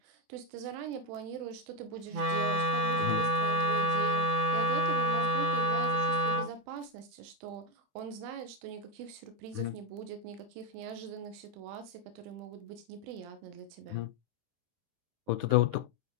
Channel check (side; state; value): left; late; 20 ms